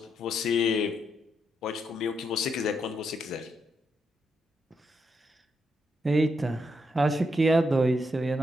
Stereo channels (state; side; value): normal; both; correlation 0.80